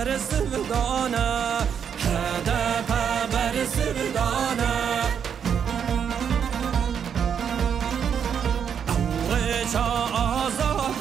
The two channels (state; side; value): quieter; left; 7.7 dB